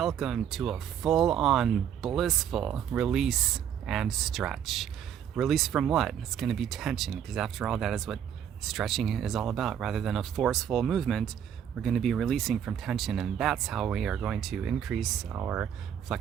to a full-on blissful release and stretch. Release from what? It's going to be tension, because after all, that is what stretching is all about. Rather than a forceful movement, we're going to be releasing from tension, and that's how we are going to increase our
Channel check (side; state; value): left; quieter; 9.0 dB